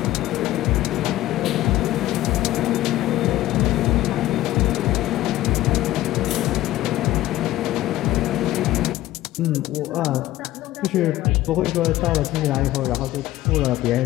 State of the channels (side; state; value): right; quieter; 15.3 dB